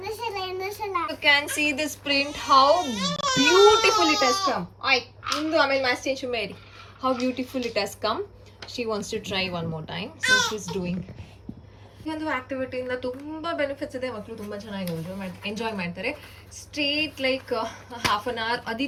You can see this print, how beautiful it has come. ಇಂದು ಆಮೇಲೆ ಮ್ಯಾಚ್ ಚೇಂಜ್ ಮಾಡಿ. How beautiful it has come. She wants to try one more time, so she's doing. ಈ ಒಂದು ಆಕ್ಟಿವಿಟಿಯಿಂದ ತುಂಬ benefits ಇದೆ. ಮಕ್ಕಳು ತುಂಬ ಚೆನ್ನಾಗಿ ಎಂಜಾಯ್ ಮಾಡ್ತಾರೆ. Straight like half an hour.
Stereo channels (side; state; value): both; identical; correlation 1.00